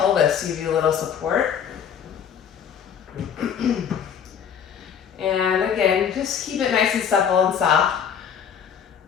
to give you a little support. And again, just keep it nice and supple and soft.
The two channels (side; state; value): right; quieter; 7.9 dB